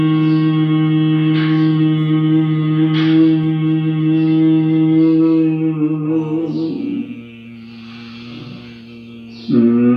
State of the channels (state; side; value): identical; both; correlation 1.00